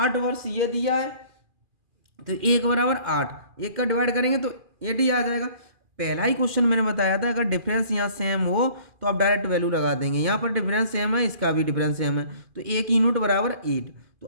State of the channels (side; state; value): left; late; 2.4 ms